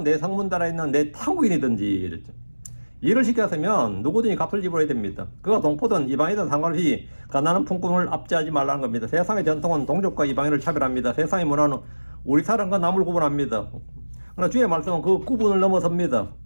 내 성문달에 있는 내 타국인이든지 이랬죠. 일을 시켰으면 누구든지 값을 지불해야 됩니다. 그가 동포든 이방이든 상관없이 가난한 품꾼을 압제하지 말라는 겁니다. 세상의 전통은 동족과 이방인을 차별합니다. 세상의 문화는 우리 사람과 남을 구분합니다. 그러나 주의 말씀은 그 구분을 넘어섭니다.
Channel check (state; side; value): inverted; both; correlation -1.00